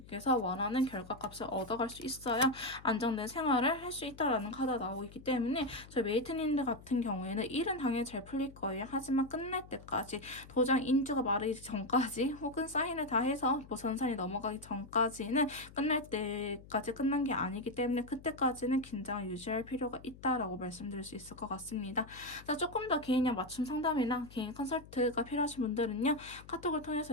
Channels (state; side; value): noise; left; hum, 19 dB below the sound